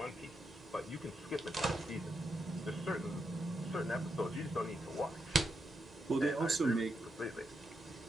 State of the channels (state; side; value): normal; both; correlation 0.83